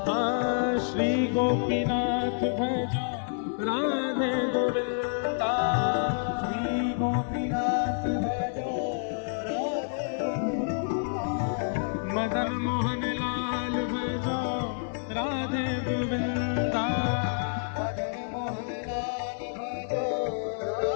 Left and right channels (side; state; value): right; silent; 57 dB below the other